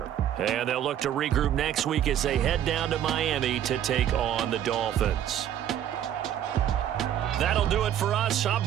And they'll look to regroup next week as they head down to Miami to take on the Dolphins. That'll do it for us. I'm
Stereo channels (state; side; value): quieter; left; 10.6 dB